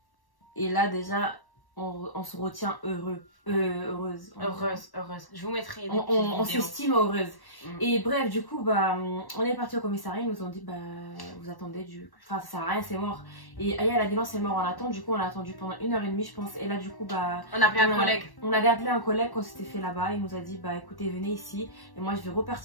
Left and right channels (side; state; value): right; late; 1.1 ms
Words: Et là déjà on se retient heureuse. Heureuse. Je vous mettrai des on s'estime heureuse. Et bref, du coup, bah, on est parti au commissariat. Ils nous ont dit, bah, vous attendez Enfin, ça sert à rien, c'est mort. Et Aya, elle a dit non, c'est mort, on attend. Du coup, on a attendu pendant 1h30, je pense. Et là, du coup, bah. On a appelé un collègue. On avait appelé un collègue qu'on s'était fait là-bas. Il nous a dit, bah, écoutez, venez ici. Et moi, je vais